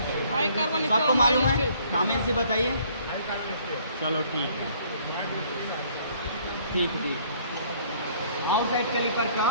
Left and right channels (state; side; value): inverted; both; correlation -0.60